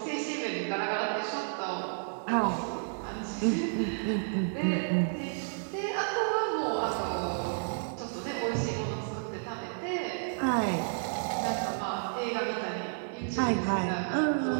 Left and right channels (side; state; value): left; silent; digital silence